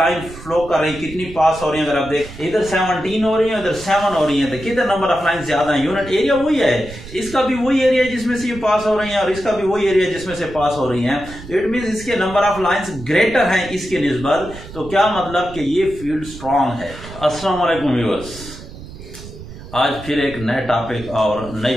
फ्लो कर रही, कितनी पास हो रही है। अगर आप देख इधर 17 हो रही है, इधर 7 हो रही है, तो कितने नंबर ऑफ लाइन ज्यादा है। यूनिट एरिया वही है, इसका भी वही एरिया जिसमें से ये पास हो रही है और इसका भी वही एरिया जिसमें से पास हो रही है। तो इट मीन इसके नंबर ऑफ लाइंस ग्रेटर हैं इसके निस्बत। तो क्या मतलब कि ये फील्ड स्ट्रांग है। अस्सलाम वालेकुम व्यूअर्स, आज फिर एक नए टॉपिक और नई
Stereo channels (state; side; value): noise; right; rumble, 15 dB below the sound